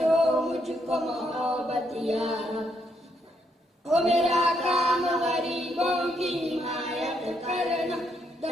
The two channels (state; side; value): normal; both; correlation 0.76